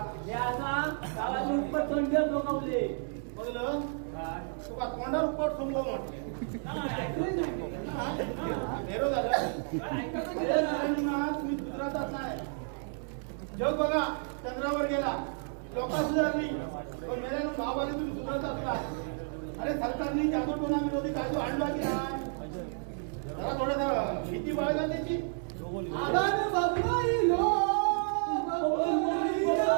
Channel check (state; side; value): silent; left; 57 dB below the other